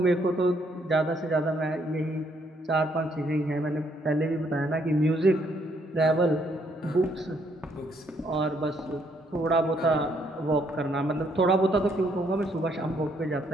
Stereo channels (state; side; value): normal; both; correlation 0.70